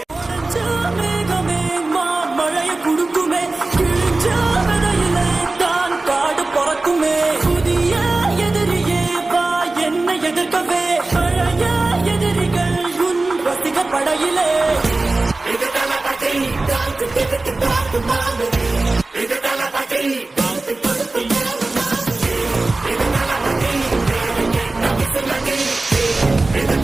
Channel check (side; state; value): left; quieter; 3.2 dB